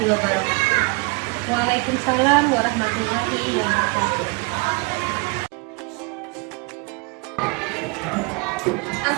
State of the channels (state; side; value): quieter; left; 29.6 dB